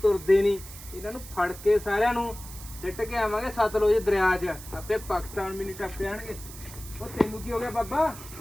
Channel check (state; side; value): noise; right; hiss, 15 dB below the sound